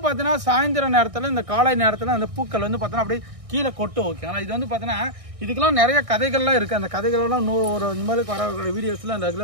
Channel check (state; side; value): late; left; 1.6 ms